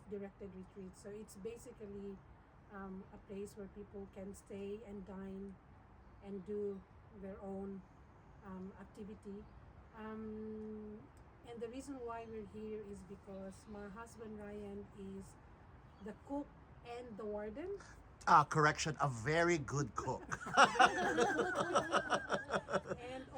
retreats. So it's basically a place where people can stay and dine and do their own activity. And the reason why we're here is because my husband Ryan is the cook and the warden. Correction, a very good cook. And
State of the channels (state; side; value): identical; both; correlation 1.00